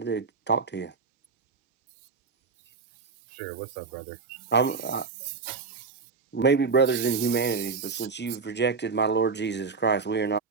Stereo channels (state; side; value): quieter; left; 4.8 dB